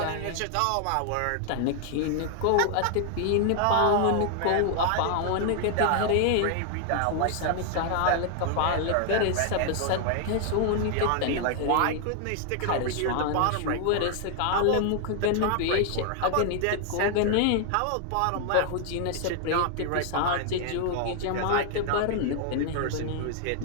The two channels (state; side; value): different; both; correlation 0.00